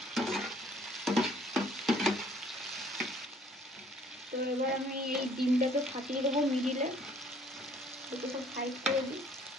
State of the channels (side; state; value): both; normal; correlation 0.59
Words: তো এবার আমি এই ডিমটাকে ফাটিয়ে দেবো মিডিলে, দুটো সব সাইড করে দিই।